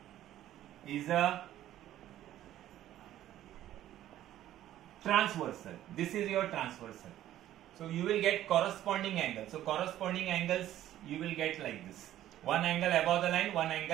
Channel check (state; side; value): quieter; left; 12.9 dB